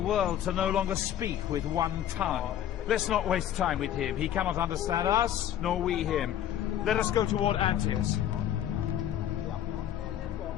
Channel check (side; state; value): right; quieter; 10.9 dB